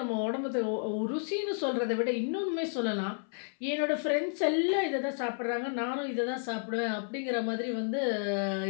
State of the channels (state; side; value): silent; right; 57 dB below the other